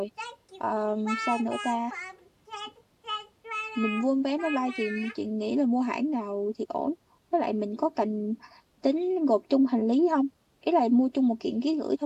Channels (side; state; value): both; identical; correlation 1.00